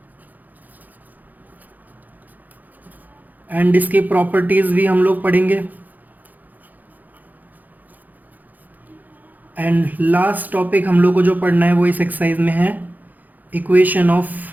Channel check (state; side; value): late; left; 0.083 ms